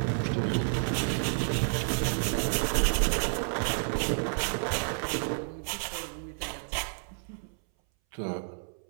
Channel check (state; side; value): silent; left; 58 dB below the other